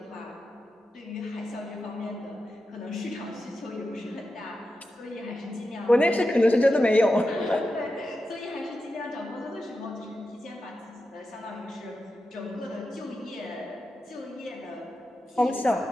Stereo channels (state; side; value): normal; both; correlation 0.90